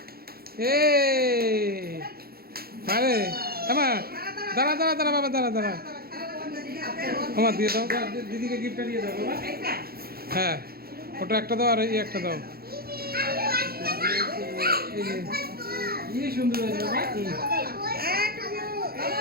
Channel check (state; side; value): late; left; 0.44 ms